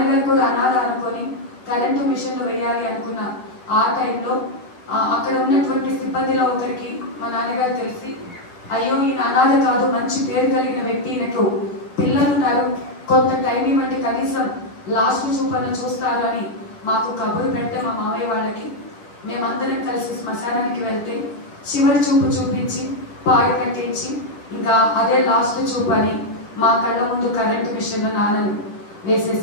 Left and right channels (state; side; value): late; right; 10 ms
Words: కూడా అనాథ అనుకొని కరెంటు మిషన్లో వేయాలి అనుకున్న ఆ టైంలో అక్కడ ఉన్నటువంటి సిబ్బందిలో ఒకరికి మా నాన్నగారు తెలిసి అయ్యో ఈయన అనాథ కాదు, మంచి పేరు కలిగిన వ్యక్తి, ఈయనకు పిల్లలున్నారు, కొంత టైం ఇవ్వండి, కనీసం లాస్ట్ చూపను చూస్తారు అని మాకు కబురు పెడితే మా మామయ్య వాళ్ళకి మేమందరం కలిసి శ్మశానానికి వెళ్తే చివరి చూపు చూపించి పాడు కట్టించి ఇంకా అదే లాస్ట్ చూపు అని మా కళ్ళ ముందు కరెంటు మిషన్లో నాన్నను